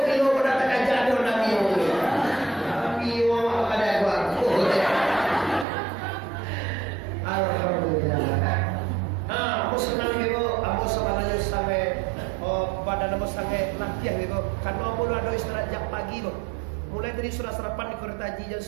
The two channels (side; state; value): left; drops out; at 5.7 s